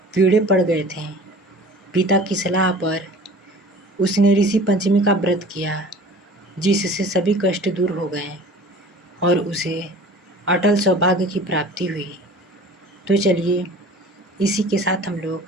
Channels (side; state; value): both; normal; correlation 0.43